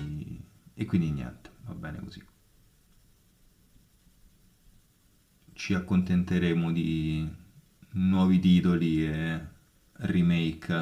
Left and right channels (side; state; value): both; identical; correlation 1.00